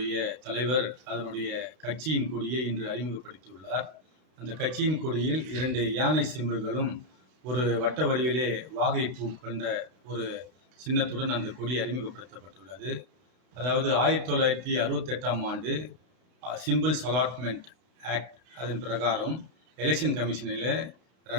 தலைவர் அதனுடைய கட்சியின் கொடியை இன்று அறிமுகப்படுத்தியுள்ளார். அந்த கட்சியின் கொடியில் 2 யானை சிம்பல்களும், ஒரு வட்ட வடிவிலே வாகைப்பூ கொண்ட ஒரு சின்னத்துடன் அந்த கொடி அறிமுகப்படுத்தப்பட்டுள்ளது. அதாவது 1968ஆம் ஆண்டு சிம்பிள்ஸ் அலாட்மெண்ட் ஆக்ட் அதன் பிரகாரம் எலெக்ஷன் கமிஷனில்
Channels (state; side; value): late; left; 31 ms